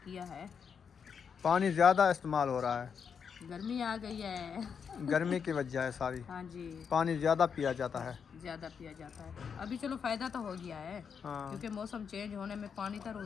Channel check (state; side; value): quieter; right; 6.7 dB